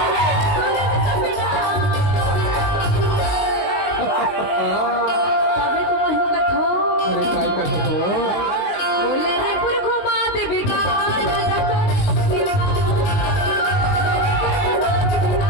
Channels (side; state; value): right; late; 19 ms